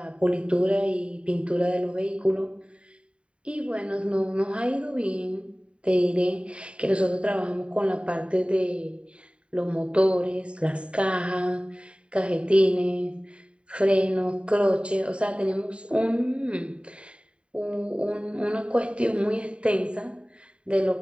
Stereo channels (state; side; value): late; left; 0.057 ms